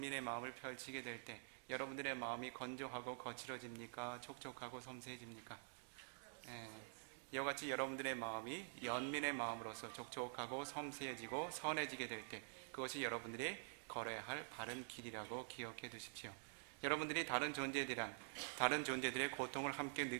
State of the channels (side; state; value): left; silent; digital silence